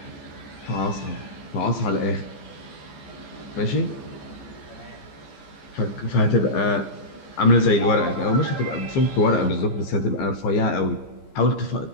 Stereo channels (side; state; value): right; late; 14 ms